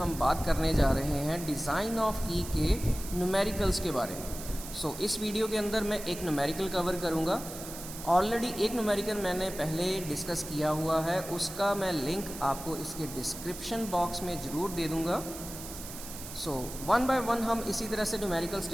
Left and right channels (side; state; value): right; noise; hiss, 11 dB below the sound